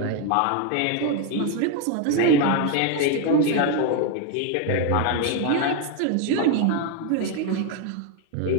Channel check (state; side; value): different; both; correlation 0.01